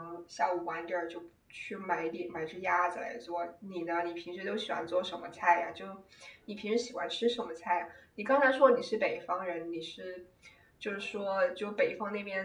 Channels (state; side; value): identical; both; correlation 1.00